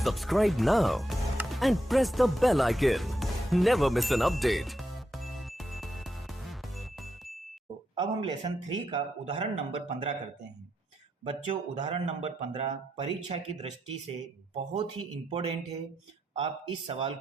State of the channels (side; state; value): both; normal; correlation 0.83